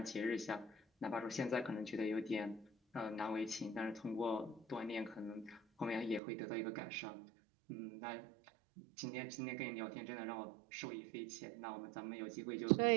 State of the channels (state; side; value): drops out; left; at 6.2 s